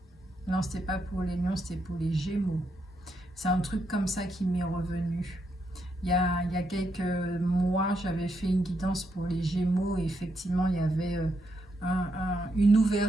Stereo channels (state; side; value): normal; both; correlation 0.80